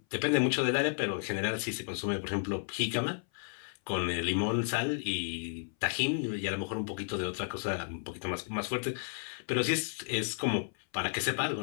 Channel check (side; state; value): right; silent; 56 dB below the other